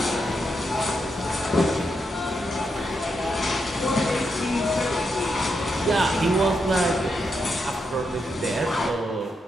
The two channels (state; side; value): normal; both; correlation 0.83